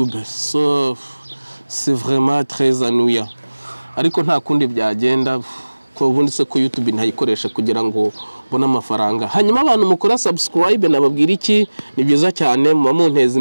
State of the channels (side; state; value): both; inverted; correlation -1.00